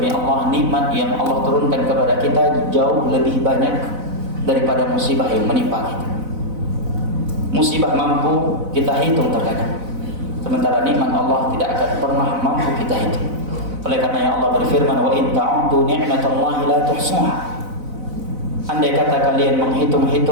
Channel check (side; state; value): left; late; 4.0 ms